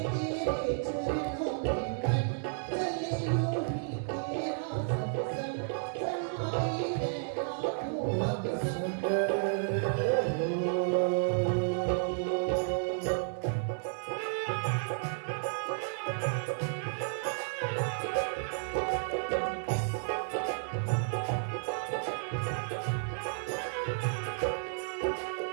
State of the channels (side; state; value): left; silent; 56 dB below the other